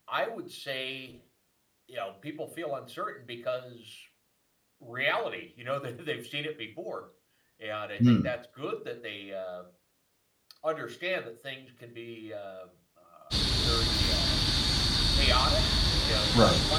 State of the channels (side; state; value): both; identical; correlation 1.00